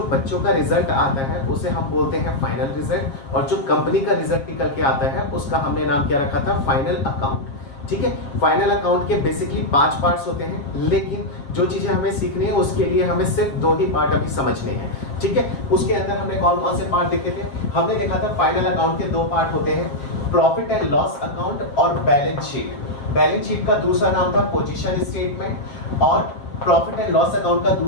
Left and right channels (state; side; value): late; right; 7.5 ms